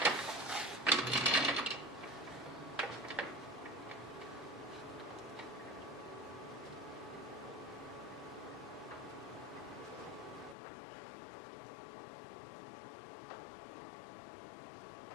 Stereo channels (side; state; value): right; drops out; at 10.6 s